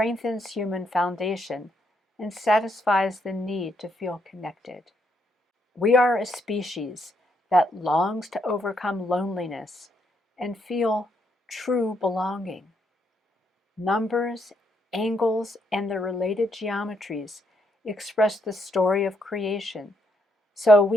human foundation and satisfies the need to feel connected. We are a species that longs to overcome loneliness and feel true belonging. Numbers, angles, and the related geometries express the story of creation so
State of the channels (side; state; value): both; normal; correlation 0.75